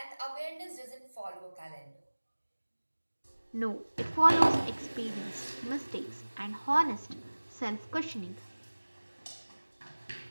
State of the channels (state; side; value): inverted; both; correlation -1.00